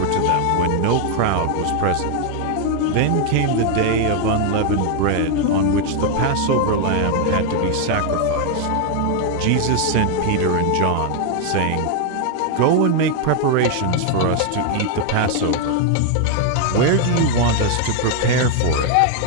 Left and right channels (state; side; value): different; both; correlation 0.00